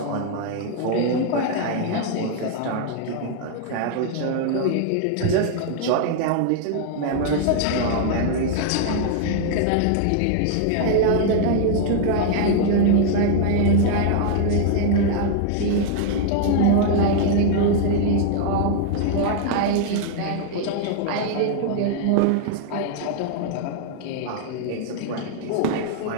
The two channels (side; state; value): both; different; correlation 0.00